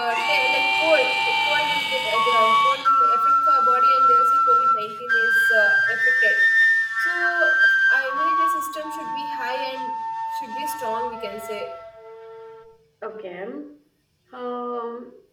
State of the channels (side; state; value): both; identical; correlation 1.00